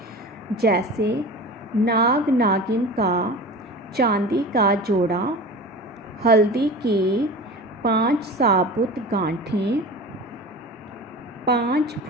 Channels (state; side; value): normal; both; correlation 0.34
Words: जैसे नाग नागिन का चांदी का जोड़ा, हल्दी की 5 साबुत गांठें, 5